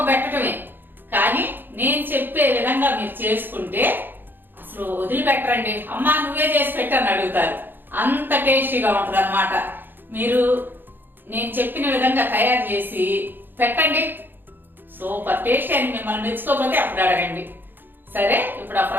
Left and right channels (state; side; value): late; left; 0.095 ms